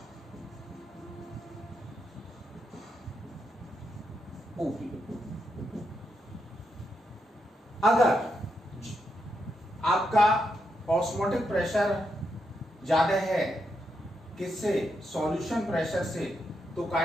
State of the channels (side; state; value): both; normal; correlation 0.82